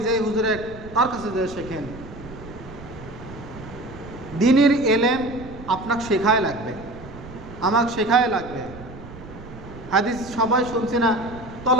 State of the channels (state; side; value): noise; right; rumble, 15 dB below the sound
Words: যে হুজুরের তার কাছে যে শেখেন। দিনের এলেম আপনাকে শেখায় লাগবে, আমাকে শেখায় লাগবে। হাদিস সবাই শুনছি না,